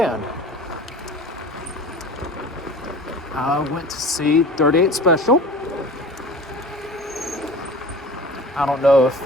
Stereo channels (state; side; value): normal; both; correlation 0.40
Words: I went to see 38 Special. I don't know if